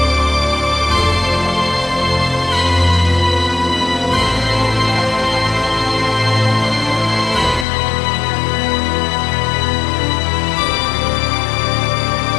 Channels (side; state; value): right; drops out; at 7.7 s